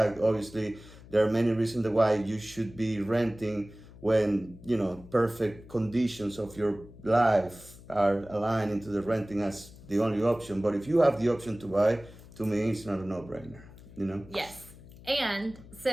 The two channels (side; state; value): left; noise; hum, 19 dB below the sound